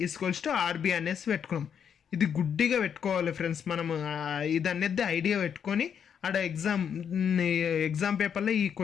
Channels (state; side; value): quieter; right; 7.8 dB